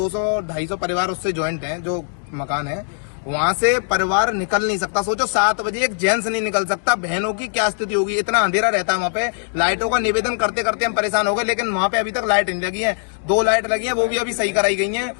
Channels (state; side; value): silent; right; digital silence